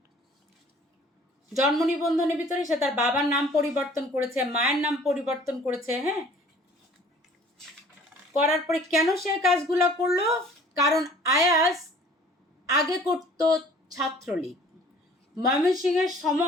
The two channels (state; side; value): normal; both; correlation 0.52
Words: জন্ম নিবন্ধনের ভিতরে সে তার বাবার নাম পরিবর্তন করেছে, মায়ের নাম পরিবর্তন করেছে। হ্যাঁ, করার পরে কেন সে কাজগুলো করলো? কারণ আয়াস আগে করতো ছাত্রলীগ। ময়মনসিংহের